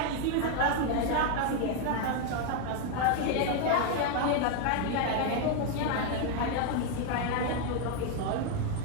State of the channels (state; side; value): different; both; correlation 0.01